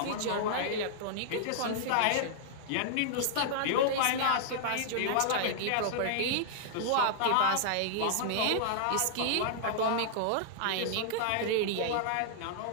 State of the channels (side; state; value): both; different; correlation -0.01